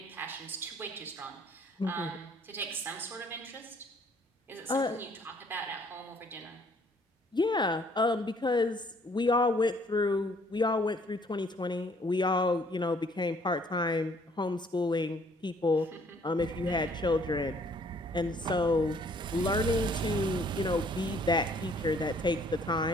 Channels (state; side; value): normal; both; correlation 0.61